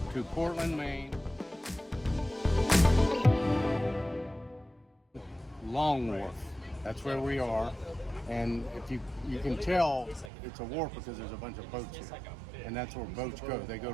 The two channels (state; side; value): drops out; left; at 10.3 s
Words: to Portland, Maine. Long Wharf. That's where we are. And if you can tell it's a wharf because there's a bunch of boats here. And that's where boats go. They go